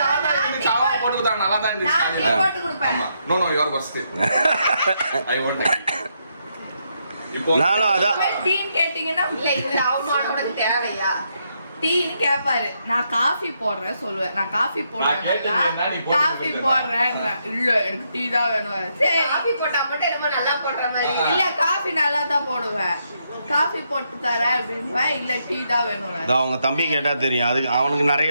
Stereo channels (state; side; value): inverted; both; correlation -0.78